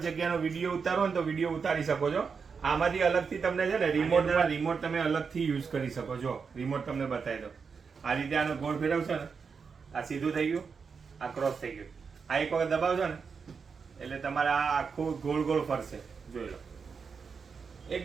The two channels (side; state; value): left; quieter; 5.6 dB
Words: જગ્યાનો વિડીયો ઉતારો ને તો વિડીયો ઉતારી શકો છો. આમાંથી અલગથી તમને છે ને રિમોટ તમે અલગથી યુઝ કરી શકો છો. રિમોટ તમને બતાવી દો. આ રીતે આનો ગોળ ફેરવશો ને આ સીધું થઈ ગયું, આ ક્રોસ થઈ ગયું. આ એક વખત દબાવશો ને એટલે તમારા આખું ગોળ ગોળ ફરશે. જોઈ લો,